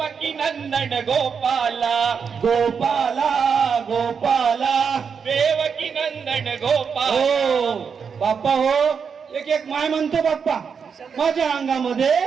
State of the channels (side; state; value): left; quieter; 6.3 dB